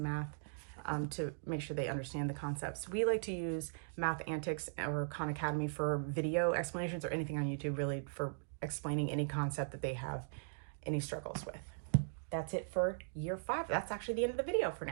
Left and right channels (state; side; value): silent; left; digital silence